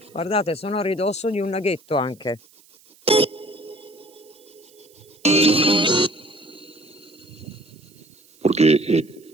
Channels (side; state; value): right; noise; hiss, 28 dB below the sound